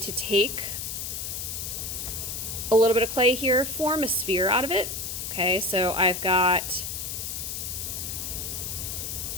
take a little bit of clay here, form a sphere out of it. Okay, so I've got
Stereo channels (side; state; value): left; noise; hiss, 5 dB below the sound